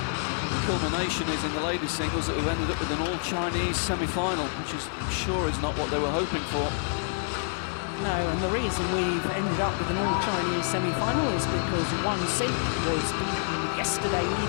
culmination is in the ladies singles that we've ended up with an all-Chinese semi-final, which is, I'm sure, is not what they were hoping for. No, and the reason we've ended up with an all-Chinese semi-final is because Wang Xin was beaten yesterday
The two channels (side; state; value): right; silent; digital silence